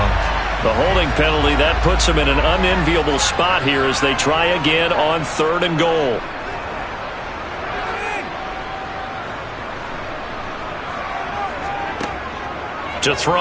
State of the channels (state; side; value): identical; both; correlation 1.00